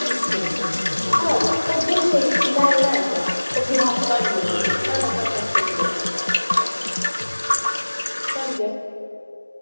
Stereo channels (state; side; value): inverted; both; correlation -1.00